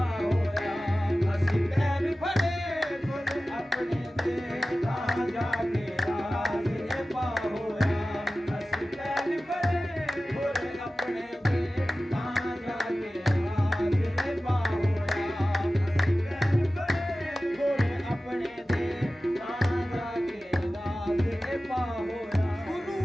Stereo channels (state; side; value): normal; both; correlation 0.96